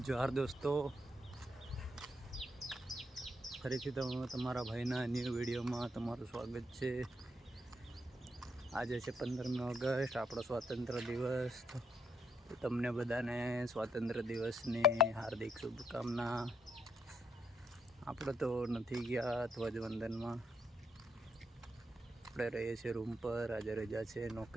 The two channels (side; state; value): both; normal; correlation 0.76